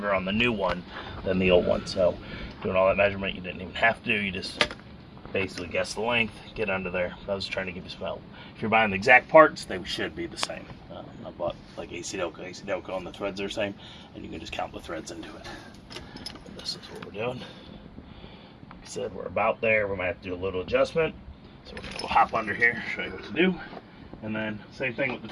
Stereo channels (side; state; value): both; identical; correlation 1.00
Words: on the new one than the old one. So doing all that measurement, you didn't even have to. You just basically guess the length, get under there. I was trying to give you some help. If you're buying the exact parts, they should be the same. I bought like AC Delco, and the threads are the same, and you can just count the threads into it. And this is what we're doing. Like I said, we're about there. We might have to do a little adjustment. So we're going to hop under here, show you what to do. And then same thing with the